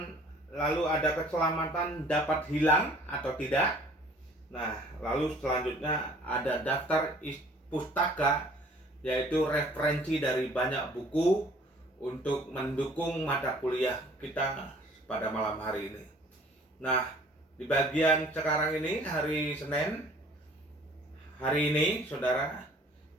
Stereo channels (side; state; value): both; normal; correlation 0.53